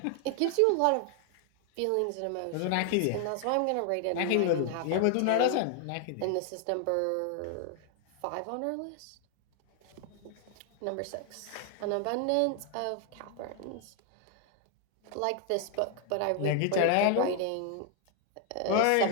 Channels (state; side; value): different; both; correlation 0.00